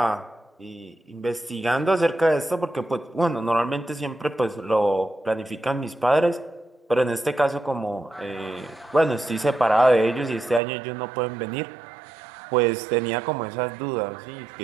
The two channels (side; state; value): left; drops out; at 10.6 s